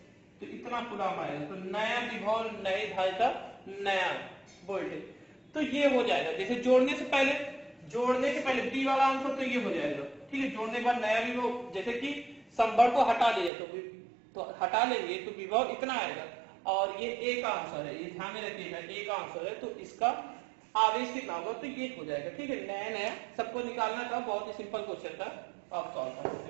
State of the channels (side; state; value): left; drops out; at 13.5 s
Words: तो इतना कूलम आएगा। तो नया विभव, नई धारिता, नया वोल्टेज, तो ये हो जाएगा। जैसे जोड़ने से पहले बी वाला आंसर तो ये हो जाएगा, ठीक है। जोड़ने के बाद नया विभव, जैसे कि संभर को हटा लिया तो हटा लेंगे तो विभव इतना आएगा, और ये ए का आंसर है, ये ध्यान में रखिएगा, ए का आंसर है, तो इसका आवेश कितना होगा, तो ये हो जाएगा, ठीक है। नया सबको निकालना था, बहुत ही सिंपल क्वेश्चन था, आप सॉल्व कर सकते